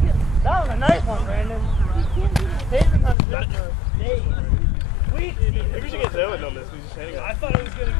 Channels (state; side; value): drops out; right; at 3.2 s